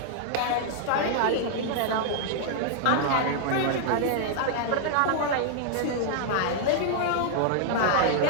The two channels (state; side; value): different; both; correlation -0.01